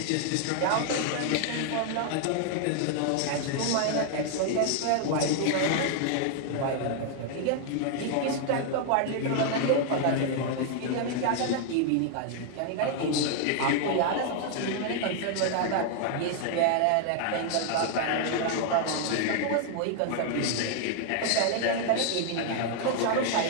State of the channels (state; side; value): different; both; correlation 0.00